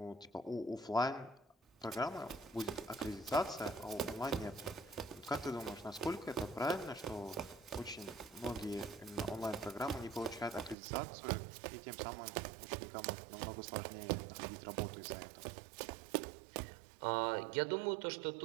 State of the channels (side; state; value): left; drops out; at 10.8 s